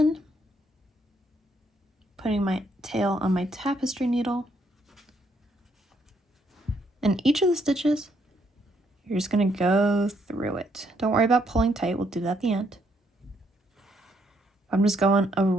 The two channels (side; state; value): both; normal; correlation 0.72